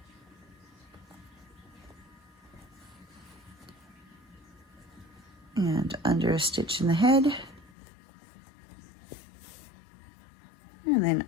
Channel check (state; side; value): drops out; right; at 7.7 s